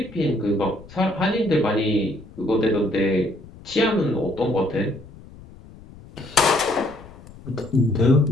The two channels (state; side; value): noise; left; rumble, 20 dB below the sound